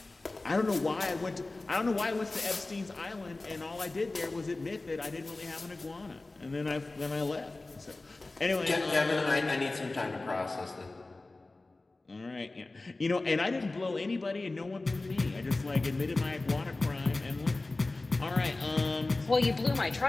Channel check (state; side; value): quieter; right; 3.2 dB